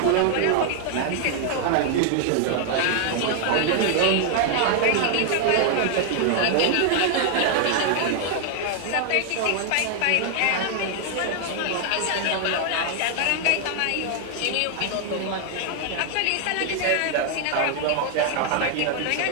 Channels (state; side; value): different; both; correlation 0.00